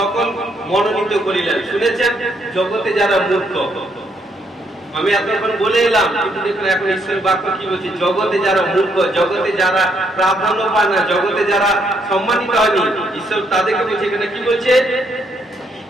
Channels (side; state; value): both; normal; correlation 0.73